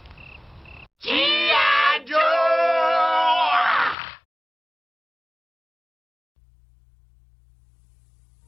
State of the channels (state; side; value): drops out; right; at 4.0 s